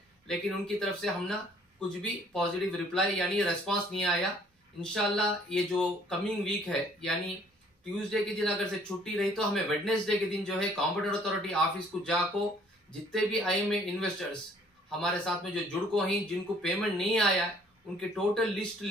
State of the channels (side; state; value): both; normal; correlation 0.59